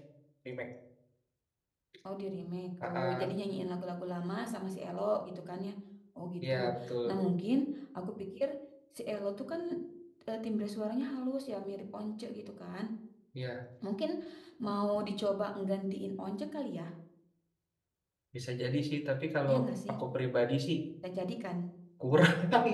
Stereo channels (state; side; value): identical; both; correlation 1.00